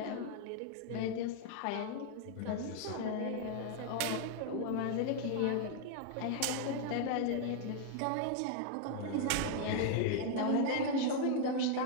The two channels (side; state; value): both; different; correlation 0.00